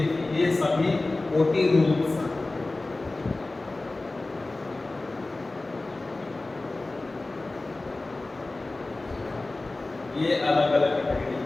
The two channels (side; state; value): right; quieter; 3.1 dB